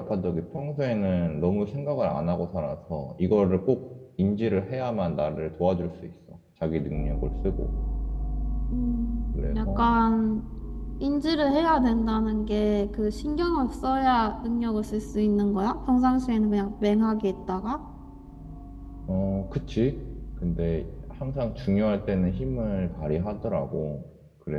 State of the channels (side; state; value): both; identical; correlation 1.00